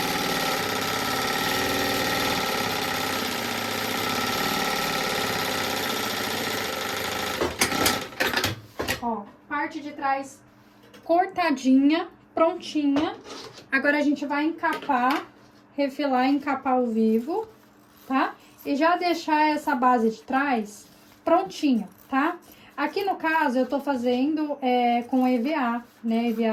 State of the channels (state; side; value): identical; both; correlation 1.00